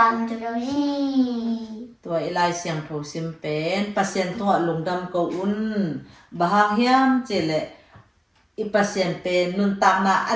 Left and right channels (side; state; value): both; identical; correlation 1.00